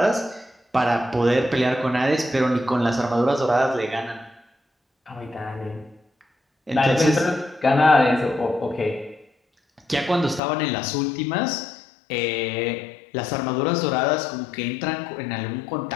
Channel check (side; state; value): right; drops out; at 10.4 s